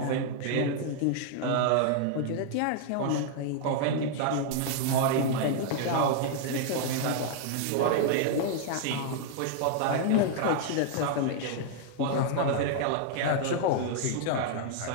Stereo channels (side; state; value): both; different; correlation -0.01